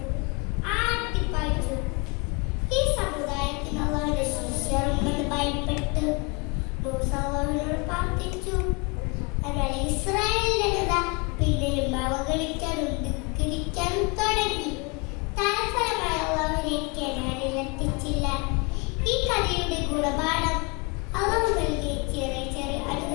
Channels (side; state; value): right; quieter; 30.5 dB